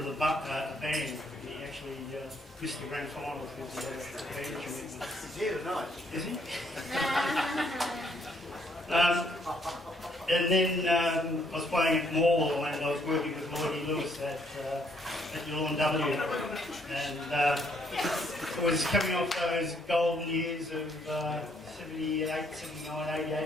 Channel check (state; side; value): normal; both; correlation 0.69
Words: the band. He actually missed the grand final because he had a band commitment. He's here tonight. Is he? And then I was playing at Morwell and I was working with Lloydie Lewis at Yulon W. And it was coming off those golden years of 78, 79, 80,